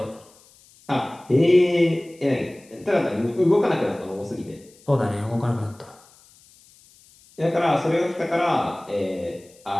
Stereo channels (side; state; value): left; noise; hiss, 27 dB below the sound